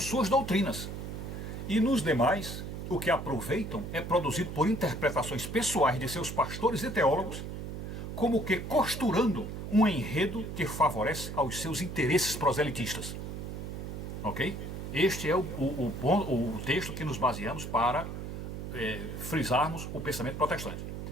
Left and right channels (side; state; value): right; noise; hum, 7 dB below the sound